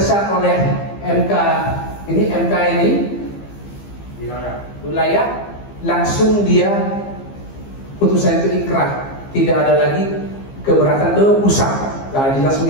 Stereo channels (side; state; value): right; late; 15 ms